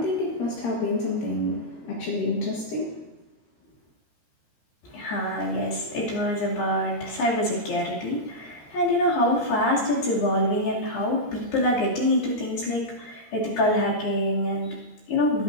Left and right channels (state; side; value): late; right; 13 ms